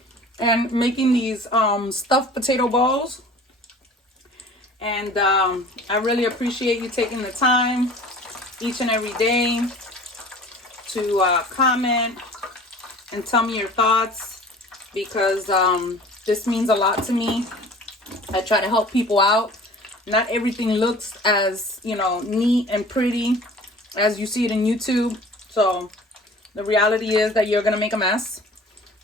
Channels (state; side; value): normal; both; correlation 0.45